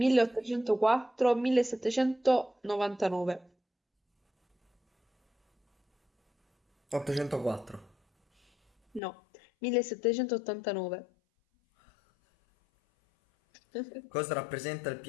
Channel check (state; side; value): drops out; right; at 9.0 s